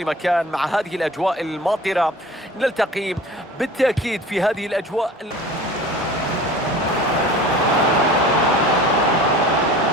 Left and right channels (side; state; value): both; normal; correlation 0.41